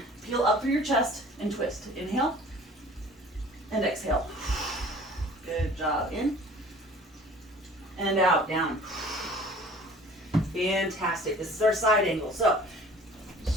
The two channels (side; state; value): both; normal; correlation 0.48